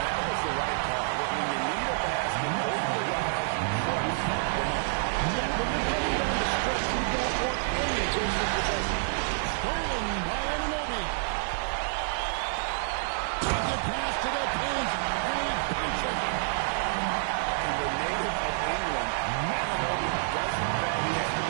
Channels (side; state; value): left; silent; 59 dB below the other